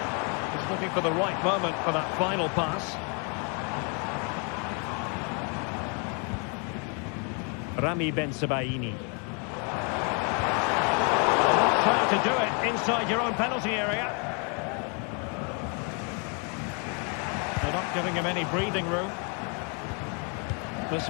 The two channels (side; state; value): right; quieter; 36.9 dB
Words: He's looking for the right moment for that final pass. Rami Ben-Sebaini. Trying to do it inside your own penalty area. They're not giving him any breathing room. This